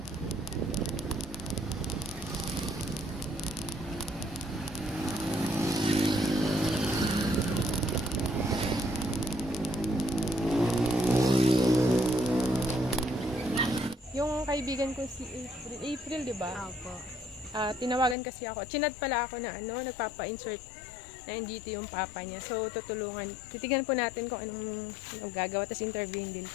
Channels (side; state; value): right; drops out; at 18.2 s